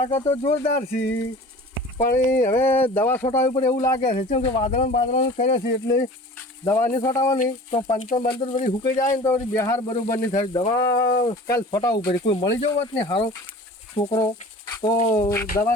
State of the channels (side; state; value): both; normal; correlation 0.41